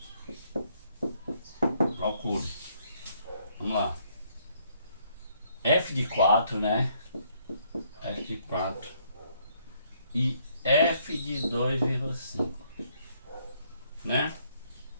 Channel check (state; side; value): inverted; both; correlation -0.68